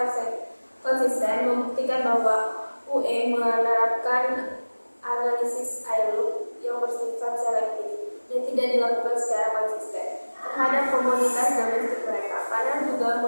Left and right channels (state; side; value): inverted; both; correlation -1.00